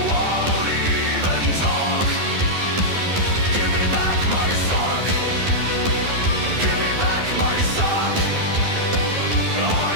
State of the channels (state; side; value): late; left; 11 ms